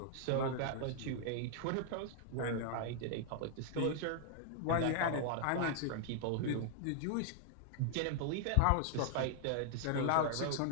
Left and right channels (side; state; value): both; different; correlation 0.00